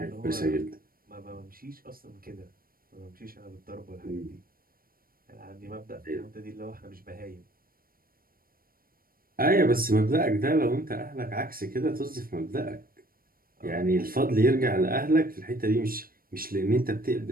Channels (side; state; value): left; late; 0.42 ms